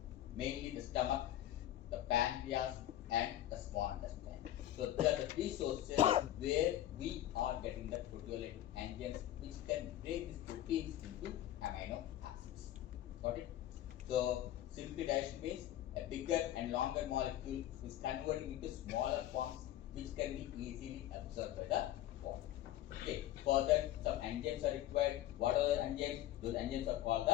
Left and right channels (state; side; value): quieter; right; 13.2 dB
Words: mainly the stomach, the pancreas and the small intestine. So these are the 3 sources where we are getting the proteolytic enzymes which can break these proteins into amino acids. Got it? So simply digestion means a bigger and longer molecule is converting into smaller forms which can be easily absorbed by the body. Okay. For that some enzymes are required. What are the enzymes? Those enzymes are called